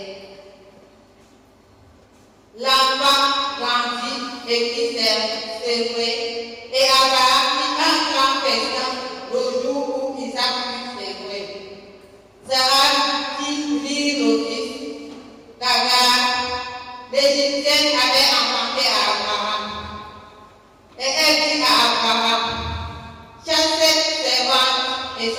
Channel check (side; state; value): both; identical; correlation 1.00